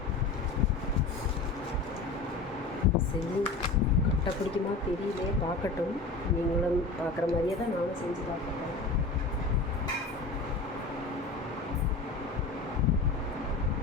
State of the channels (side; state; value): right; quieter; 3.7 dB